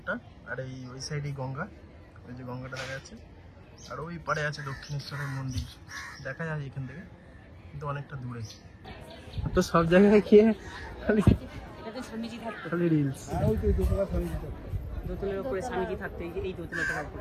আর এই ওই সাইডে গঙ্গা, ওই যে গঙ্গাটা দেখা যাচ্ছে, আর ওই পাড়ে আছে দক্ষিণেশ্বরের মন্দির, দেখা যায় এখান থেকে, কিন্তু অনেকটা দূরে। তো সব জায়গায় গিয়ে খালি স্বামীজি থাকতো, খালি রিলস। দোতলার উপরে স্বামীজি থাকতো, এই দোতলাটার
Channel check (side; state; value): both; identical; correlation 1.00